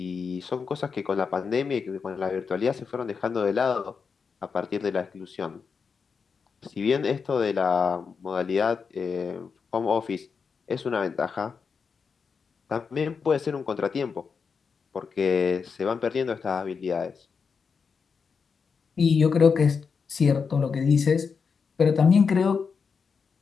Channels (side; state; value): right; quieter; 5.6 dB